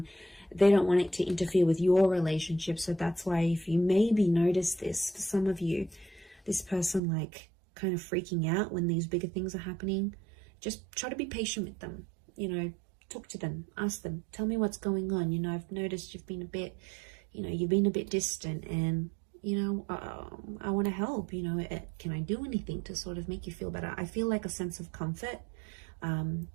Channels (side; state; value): left; drops out; at 7.0 s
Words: they don't want it to interfere with your relationship. So that's why, if you maybe notice this, for some of you, this person like kind of freaking out when these bigger things are happening, just try to be patient with them. You know, talk to them, ask them, tell me what's going on. You know, I've noticed you've been a bit, you know, you've been a bit distant, and you know, I want to help. You know, can I do anything to sort of make you feel better? I feel like a sense of comfort,